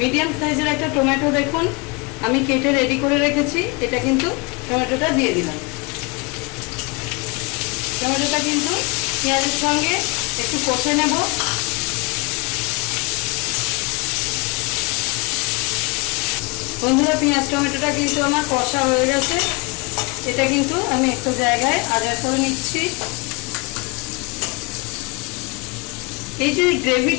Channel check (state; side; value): quieter; right; 28.5 dB